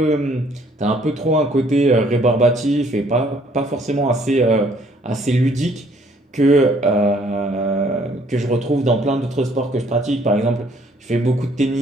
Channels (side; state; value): both; normal; correlation 0.62